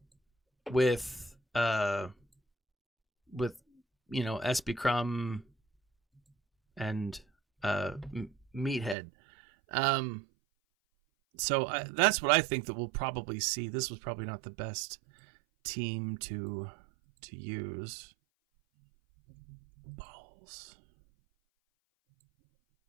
with SB Crumb and Meathead. So that's what I think that we'll probably see. This was probably not the best team to use. Balls.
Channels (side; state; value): left; drops out; at 9.0 s